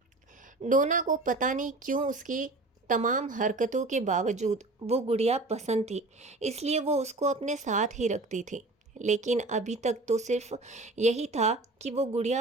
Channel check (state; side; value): quieter; left; 3.0 dB